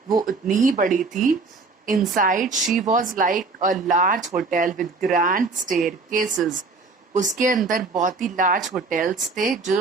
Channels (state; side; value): quieter; left; 4.0 dB